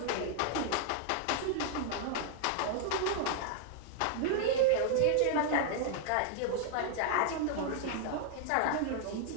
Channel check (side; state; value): both; different; correlation 0.00